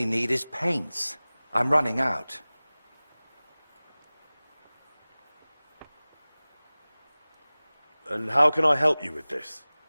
need is paints. I'm running out. And how can I help you with this?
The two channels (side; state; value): both; inverted; correlation -0.99